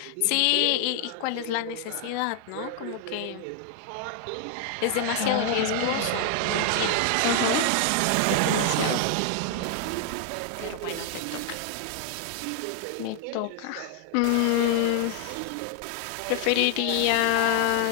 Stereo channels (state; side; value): different; both; correlation 0.00